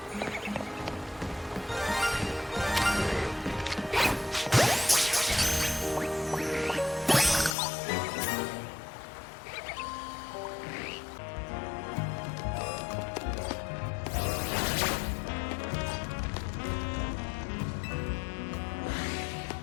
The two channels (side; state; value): right; drops out; at 7.6 s